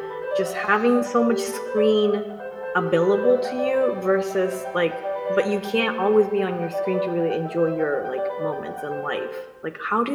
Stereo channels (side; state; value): both; identical; correlation 1.00